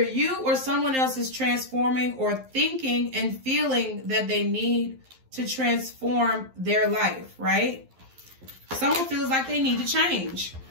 you or someone else is transforming or thinking and feeling that they need to transform their life, right? Someone feels like they need to change.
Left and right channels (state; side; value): late; left; 11 ms